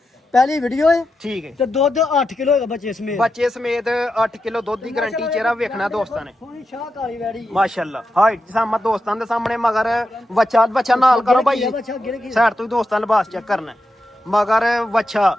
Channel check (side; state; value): both; normal; correlation 0.88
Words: ਪਹਿਲੀ ਵੀਡੀਓ ਹੈ ਠੀਕ ਹੈ ਤੇ ਦੁੱਧ 8 ਕਿਲੋ ਹੈਗਾ ਬੱਚੇ ਸਮੇਤ ਬੱਚੇ ਸਮੇਤ 8 ਕਿਲੋ ਦੁੱਧ ਦੀ ਗਾਰੰਟੀ ਚਿਹਰਾ ਵੇਖਣਾ ਦੋਸਤਾਂ ਨੇ ਸੋਹਣੀ ਸ਼ਾਹ ਕਾਲੀ ਵੈੜੀ ਮਾਸ਼ਾਅੱਲਾ ਹਾਈਟ ਸਾਮਾ ਦੋਸਤਾਂ ਦੇ ਸਾਹਮਣੇ ਮਗਰ ਬੱਚਾ ਨਾਲ ਕਰੋ ਭਾਈ ਬੱਚਾ ਗਿਰ ਗਿਆ ਸਾਈਡ ਤੋਂ ਹੀ ਦੋਸਤਾਂ ਲਿਬਾਸ ਚੈੱਕ ਕਰਨਾ ਮਗਰ ਵੱਛਾ